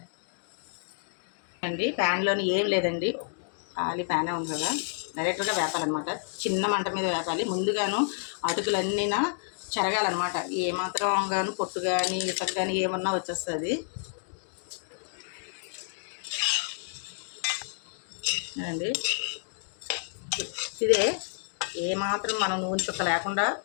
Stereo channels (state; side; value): silent; right; digital silence